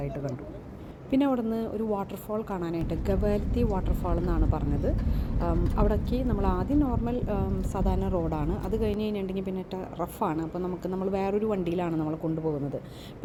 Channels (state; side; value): identical; both; correlation 1.00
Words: കണ്ടു. പിന്നെ അവിടെ നിന്ന് ഒരു വാട്ടർഫാൾ കാണാനായിട്ട്, ഗവാൽത്തി വാട്ടർഫാൾ എന്നാണ് പറഞ്ഞത്. അവിടേക്ക് നമ്മൾ ആദ്യം നോർമൽ സാധാരണ റോഡാണ്. അത് കഴിഞ്ഞ് കഴിഞ്ഞിട്ടുണ്ടെങ്കിൽ പിന്നെ റഫാണ്. അപ്പോൾ നമ്മൾ വേറൊരു വണ്ടിയിലാണ് നമ്മൾ കൊണ്ടുപോകുന്നത്.